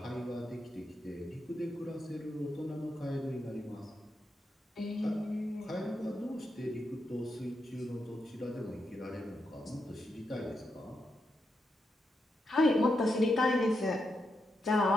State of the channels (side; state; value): both; normal; correlation 0.84